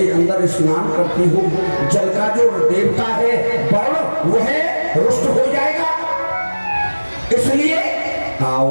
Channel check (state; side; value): inverted; both; correlation -1.00